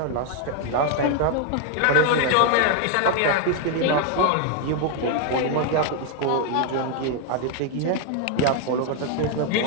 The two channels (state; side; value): different; both; correlation 0.01